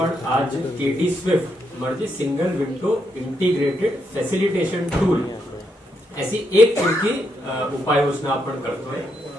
आज केडी स्विफ्ट म्हणजे single window integrated facilitation tool ऐसी एक पुरकी उपाययोजना आपण करतोय।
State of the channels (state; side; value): normal; both; correlation 0.79